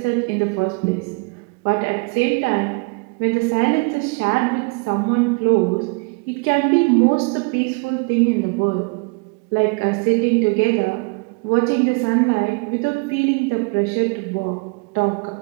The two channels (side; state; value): left; quieter; 30.9 dB